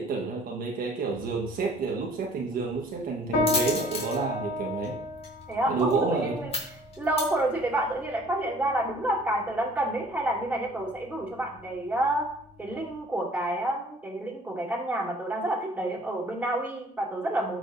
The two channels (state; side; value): normal; both; correlation 0.53